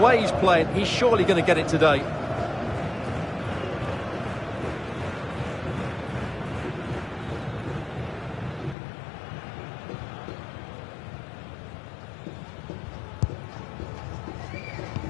he's playing, he's surely going to get it today.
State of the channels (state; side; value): drops out; right; at 8.8 s